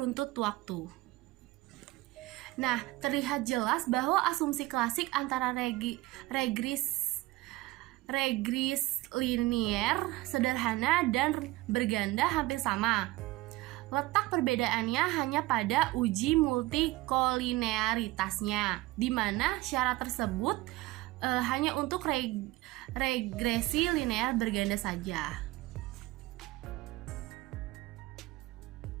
waktu. Nah, terlihat jelas bahwa asumsi klasik antara regres linear sederhana dan berganda hampir sama. Letak perbedaannya hanya pada uji multikolinearitasnya, di mana syarat tersebut hanya untuk regresi linear berganda saja.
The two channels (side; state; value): left; quieter; 19.4 dB